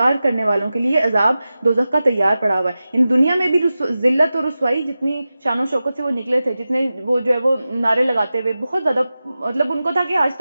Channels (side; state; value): both; inverted; correlation -0.94